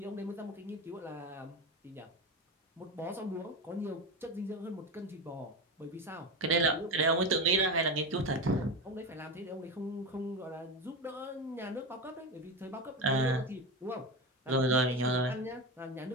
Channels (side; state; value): both; normal; correlation 0.20